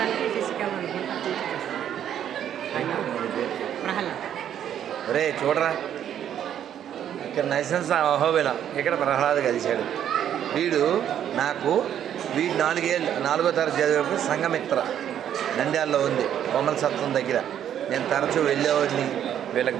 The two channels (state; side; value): quieter; left; 10.0 dB